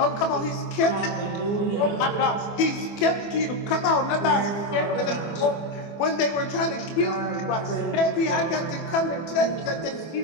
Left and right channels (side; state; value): right; late; 24 ms